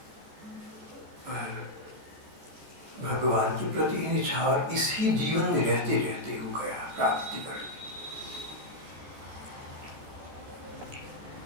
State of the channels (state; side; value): late; left; 14 ms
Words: पर भगवान के प्रति निछावर इसी जीवन में रहते रहते हो गया, प्राप्ति कर ली।